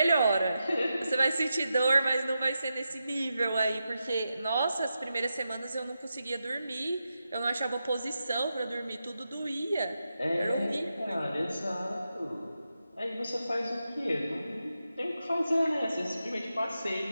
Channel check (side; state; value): both; inverted; correlation -0.88